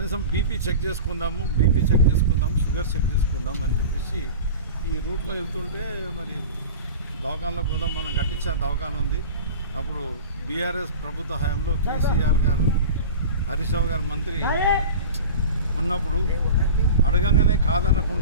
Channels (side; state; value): both; inverted; correlation -0.33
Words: బీపీ చెక్ చేసుకుందాము, షుగర్ చెక్ చేసుకుందాం అని చెప్పేసి ఈ రూట్లో వెళ్తుంటే మరి దవాఖానలో కూడా మనం కట్టించిన దవాఖాన ఉంది. అప్పుడు బీఆర్ఎస్ ప్రభుత్వ హయాంలో కేసీఆర్ గారు, హరీష్ రావు గారు మంత్రి ఉన్నప్పుడు అడగంగానే